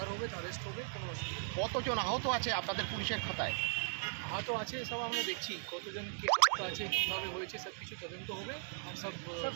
হবে অ্যারেস্ট হবে, কোনো অসুবিধা নেই। কতজন আহত আছে আপনাদের পুলিশের খাতায়? আহত আছে সব আমরা দেখছি, কতজন কি আহত আছে, কীভাবে হয়েছে, সব কিছু তদন্ত হবে আর সব ধরা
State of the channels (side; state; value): left; silent; digital silence